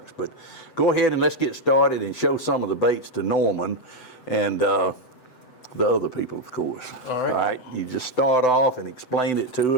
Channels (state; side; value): late; right; 7.9 ms